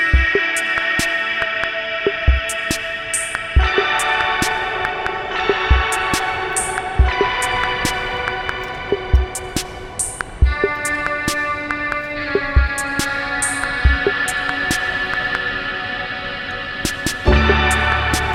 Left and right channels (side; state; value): both; identical; correlation 1.00